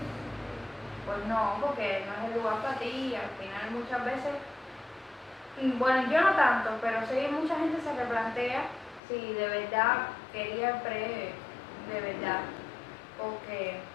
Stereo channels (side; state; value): right; drops out; at 9.0 s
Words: no, porque no es el lugar para ti. Al final muchas veces, bueno, yo no tanto, pero sí mucha gente se replantea si de verdad quería el pre, de verdad, porque